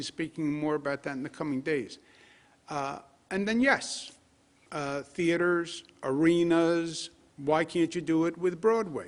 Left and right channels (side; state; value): both; identical; correlation 1.00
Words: speaking more about that in the coming days. And then, yes, theaters, arenas, why can't you do it with